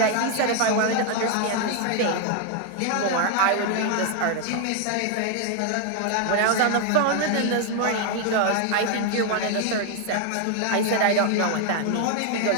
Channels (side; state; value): both; different; correlation 0.01